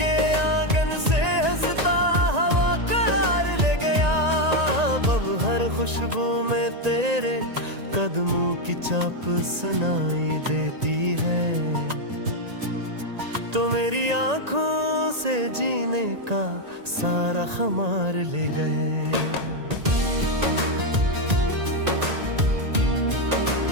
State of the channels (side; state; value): left; late; 1.9 ms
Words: खुशबू में तेरे कदमों की चाप सुनाई देती है। तो मेरी आंखों से जीने का सारा खुमार ले गए।